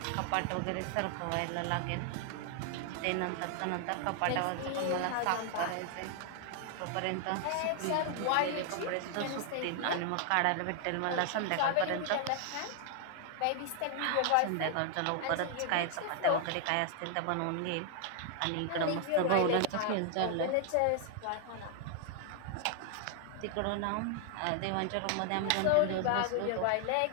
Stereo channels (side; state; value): both; different; correlation 0.00